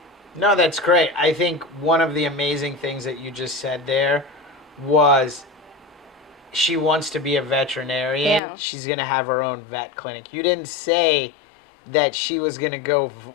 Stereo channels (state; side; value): drops out; right; at 8.4 s